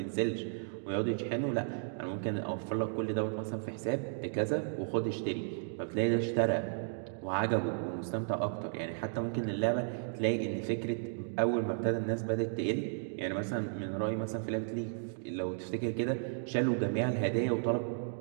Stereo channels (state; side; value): silent; left; digital silence